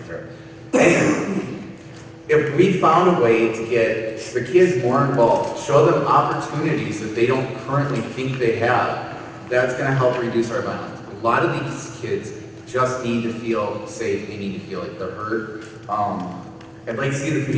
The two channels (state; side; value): identical; both; correlation 1.00